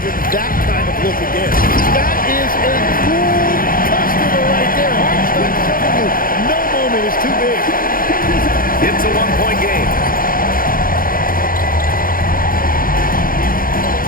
him that kind of look again. That is a cool customer right there. Hartenstein showing you no moment is too big. It's a 1-point game.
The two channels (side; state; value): right; late; 0.41 ms